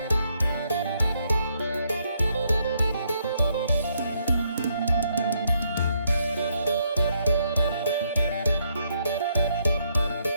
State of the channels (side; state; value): both; inverted; correlation -0.75